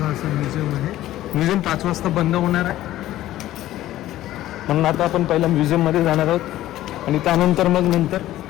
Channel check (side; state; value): right; quieter; 14.4 dB